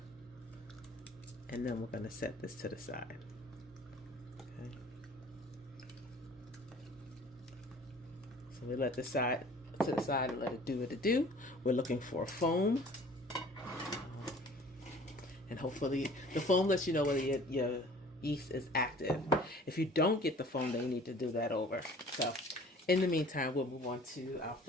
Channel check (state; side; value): normal; both; correlation 0.49